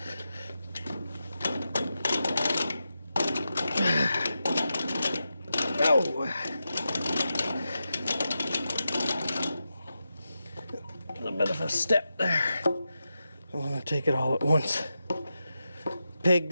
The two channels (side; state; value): both; inverted; correlation -0.89